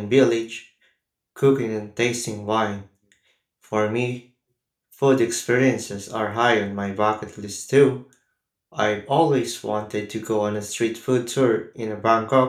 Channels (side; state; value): both; identical; correlation 1.00